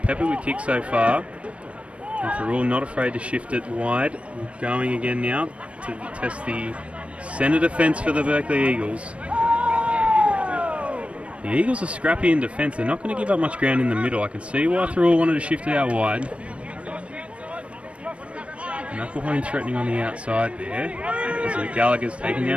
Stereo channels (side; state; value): left; late; 0.062 ms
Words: with kicks so far. And Thirroul not afraid to shift it wide. Going again now to test the centre defence for the Berkeley Eagles. The Eagles are scrappy in defence. They're not going to give up much ground in the middle. I can see why Thirroul wanted to shift it out wide. Knucklehone threatening on the outside there. As Gallagher's taken